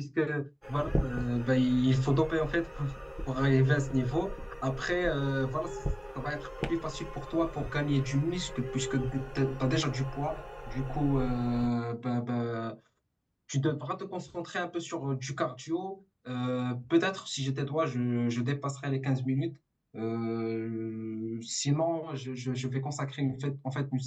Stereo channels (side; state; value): both; identical; correlation 1.00